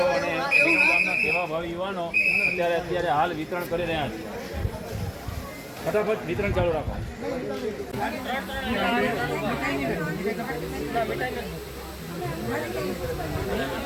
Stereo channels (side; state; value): both; identical; correlation 1.00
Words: અને વિરમગામના સેવાભાવી યુવાનો અત્યારે હાલ વિતરણ કરી રહ્યા છે. ફટાફટ વિતરણ ચાલુ રાખો.